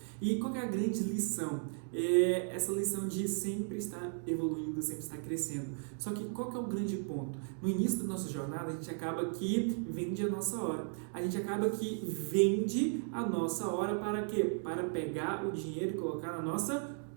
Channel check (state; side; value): silent; left; 54 dB below the other